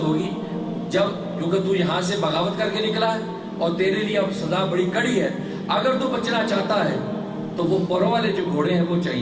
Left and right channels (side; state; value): both; identical; correlation 1.00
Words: ہوگی جب، کیونکہ تو یہاں سے بغاوت کر کے نکلا ہے اور تیرے لیے اب سزا بڑی کڑی ہے، اگر تو بچنا چاہتا ہے تو وہ پروں والے جو گھوڑے ہیں وہ